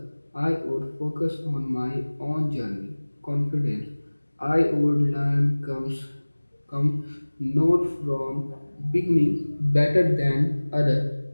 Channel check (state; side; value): inverted; both; correlation -1.00